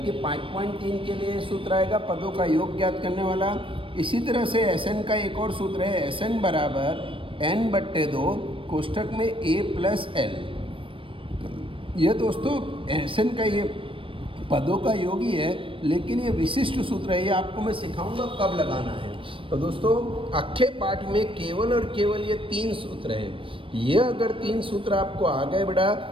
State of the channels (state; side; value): late; left; 0.25 ms